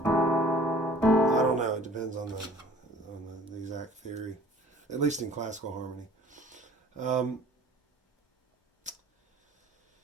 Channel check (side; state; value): both; normal; correlation 0.51